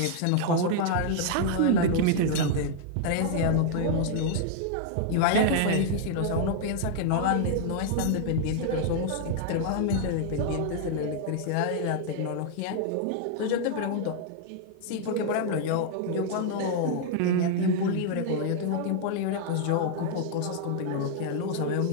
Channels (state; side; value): different; both; correlation 0.00